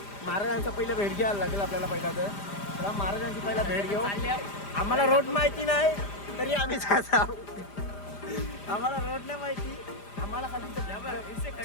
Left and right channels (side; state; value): right; late; 5.0 ms